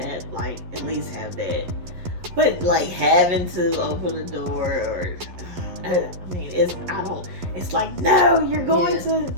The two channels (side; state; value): left; late; 11 ms